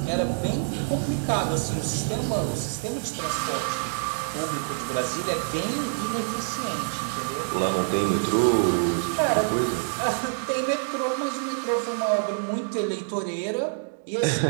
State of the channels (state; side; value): silent; left; digital silence